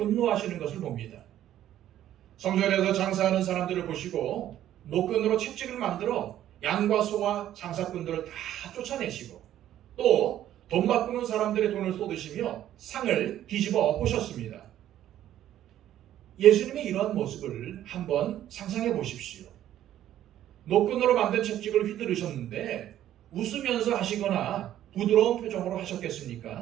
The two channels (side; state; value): left; quieter; 12.1 dB